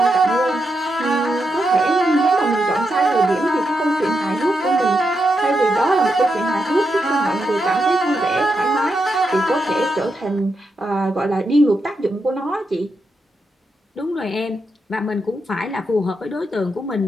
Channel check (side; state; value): both; normal; correlation 0.84